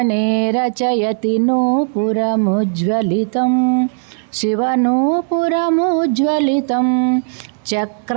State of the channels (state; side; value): silent; left; digital silence